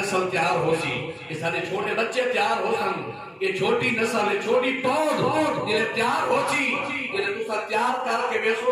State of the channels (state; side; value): identical; both; correlation 1.00